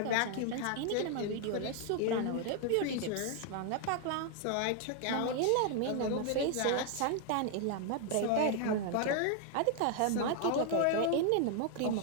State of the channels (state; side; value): different; both; correlation 0.00